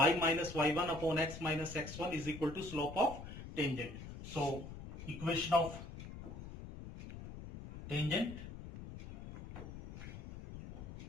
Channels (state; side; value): noise; left; rumble, 11 dB below the sound